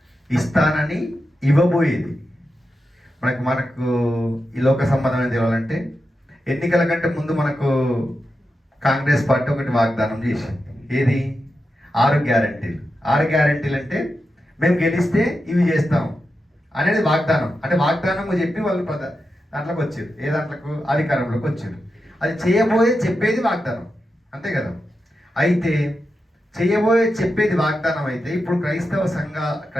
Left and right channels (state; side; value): normal; both; correlation 0.89